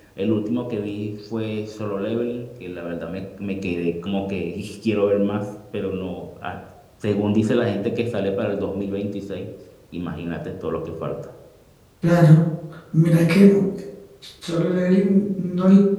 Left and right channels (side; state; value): both; identical; correlation 1.00